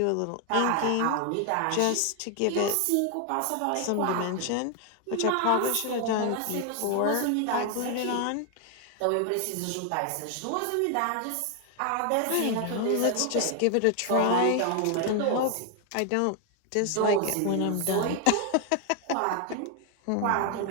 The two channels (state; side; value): different; both; correlation 0.00